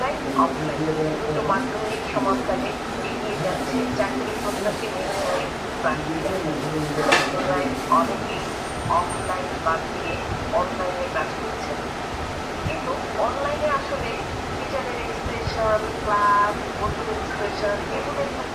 অফলাইন দুটো মাধ্যমিক সমাপকালে এগিয়ে যাচ্ছে চাকরি প্রত্যাশী মেধাবী প্রার্থীরা। অনেকেই অফলাইন বাদ দিয়ে অনলাইনে কাজ করছেন, কিন্তু অনলাইনে আসলে টিচারের এক্সপ্রেশন, ক্লাস, বন্ধুদের এক্সপ্রেশন এগুলো একটু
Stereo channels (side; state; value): both; identical; correlation 1.00